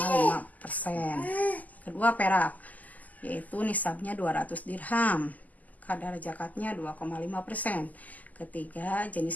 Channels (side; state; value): right; late; 0.079 ms